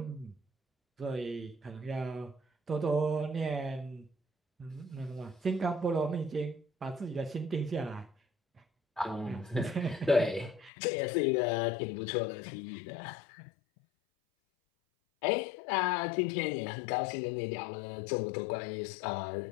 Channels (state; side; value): drops out; right; at 10.7 s